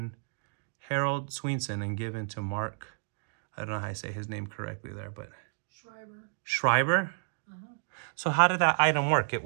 Harold Sweenson and given to Mark, I don't know how I say his name correctly there, but... Schreiber. Schreiber? Uh-huh. So how did that item work? It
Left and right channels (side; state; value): left; silent; digital silence